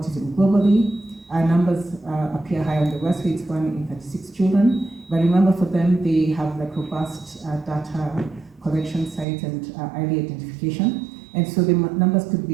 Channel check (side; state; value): left; drops out; at 9.2 s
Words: globally. Our numbers appear high on the West, where it's 1 in 36 children. But remember, for them, they have like robust data collection sites and early identification. And so the numbers could